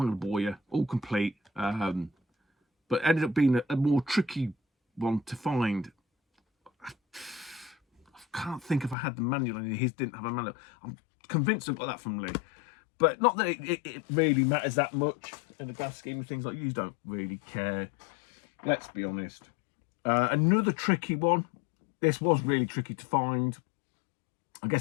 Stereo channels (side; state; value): right; drops out; at 9.0 s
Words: to bore you, all complete, but ended up being a more tricky one to find. I can't think if I had the manual, and his didn't have a manual. I'm convinced I got that from Lee, but not that it really matters that much in the grand scheme of things. Like, you don't really care, let's be honest. Another tricky one. This was really tricky to find. I